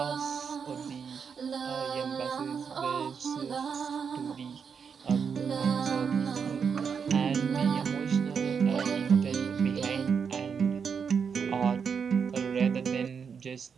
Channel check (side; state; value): left; quieter; 6.4 dB